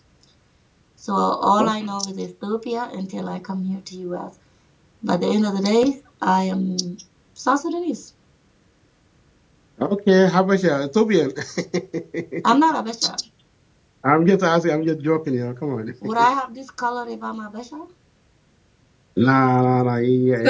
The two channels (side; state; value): both; identical; correlation 1.00